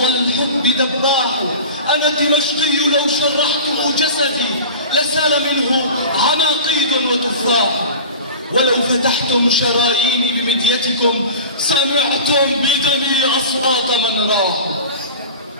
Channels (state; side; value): inverted; both; correlation -0.35